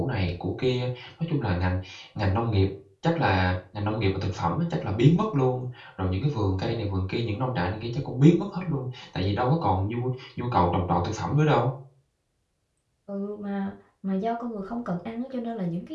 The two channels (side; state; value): both; identical; correlation 1.00